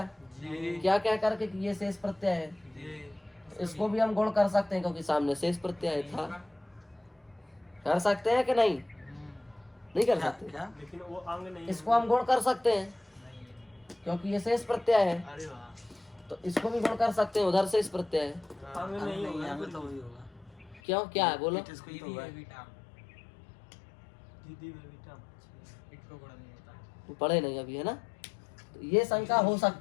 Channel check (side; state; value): right; drops out; at 20.8 s